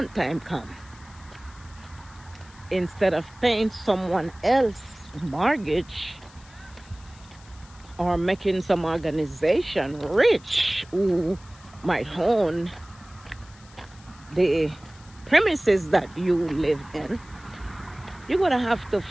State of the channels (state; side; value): noise; left; hiss, 25 dB below the sound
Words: time comes. Instead of paying someone else's mortgage or making some organization rich who might own the premises that you live in, you're going to have to